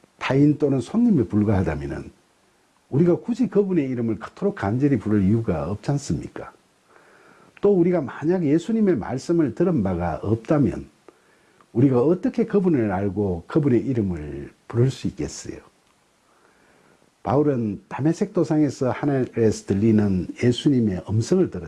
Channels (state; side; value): identical; both; correlation 1.00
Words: 타인 또는 손님에 불과하다면 우리가 굳이 그분의 이름을 그토록 간절히 부를 이유가 없지 않습니까? 또 우리가 만약 예수님의 말씀을 들은 바가 없다면 우리가 어떻게 그분을 알고 그분의 이름을 부를 수 있겠어요? 바울은 다메섹 도상에서 하늘에서 들리는 예수님의 음성을